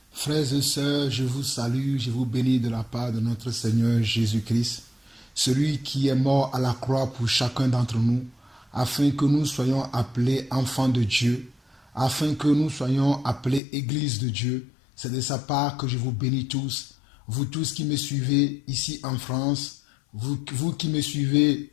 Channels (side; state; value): right; drops out; at 13.6 s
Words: Frères et sœurs, je vous salue, je vous bénis de la part de notre Seigneur Jésus-Christ, celui qui est mort à la croix pour chacun d'entre nous, afin que nous soyons appelés enfants de Dieu, afin que nous soyons appelés Église de Dieu. C'est de sa part que je vous bénis tous, vous tous qui me suivez ici en France, vous qui me suivez